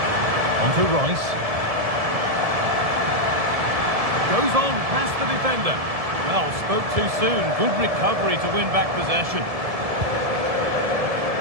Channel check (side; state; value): left; late; 1.7 ms